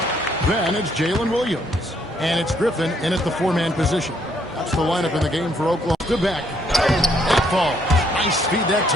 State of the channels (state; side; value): normal; both; correlation 0.69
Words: Then it's Jalen Williams. And it's Griffin in at the 4-man position. That's the lineup in the game for Oklahoma. To back. That falls. Nice feed that